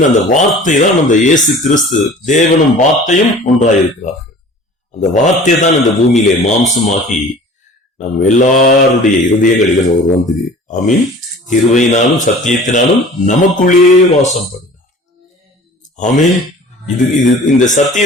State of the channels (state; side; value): normal; both; correlation 0.44